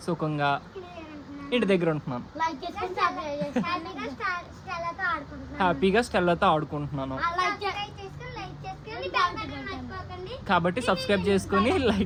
సుఖంగా ఇంటి దగ్గర ఉంటున్నాను. హ్యాపీగా స్టెల్లాతో ఆడుకుంటున్నాను. కాబట్టి సబ్స్క్రైబ్ చేసుకొని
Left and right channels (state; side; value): identical; both; correlation 1.00